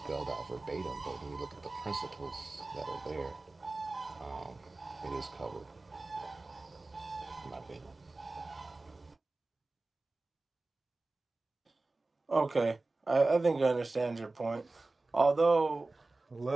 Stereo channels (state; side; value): quieter; left; 3.2 dB